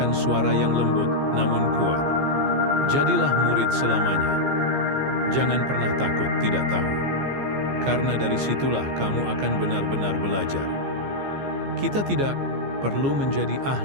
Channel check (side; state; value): left; late; 15 ms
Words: suara yang lembut namun kuat. Jadilah murid selamanya. Jangan pernah takut tidak tahu. Karena dari situlah kamu akan benar-benar belajar. Kita tidak perlu menjadi